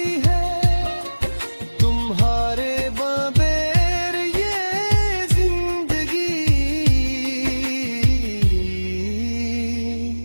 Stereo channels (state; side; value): inverted; both; correlation -1.00